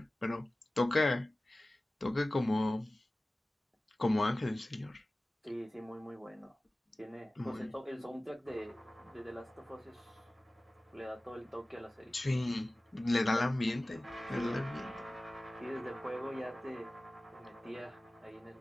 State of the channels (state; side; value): normal; both; correlation 0.97